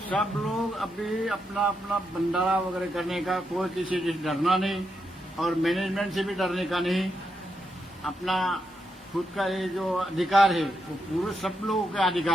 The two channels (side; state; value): both; normal; correlation 0.83